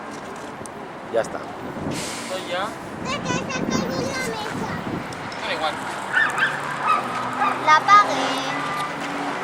Ya está. Esto ya... ¿De qué se cayó la mesa? Da igual. La apagué.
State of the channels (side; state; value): both; identical; correlation 1.00